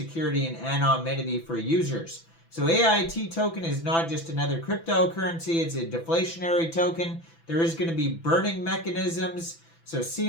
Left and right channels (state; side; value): late; right; 6.0 ms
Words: and anonymity for users. So AIT token is not just another cryptocurrency, it's a deflationary token. There is going to be burning mechanisms, so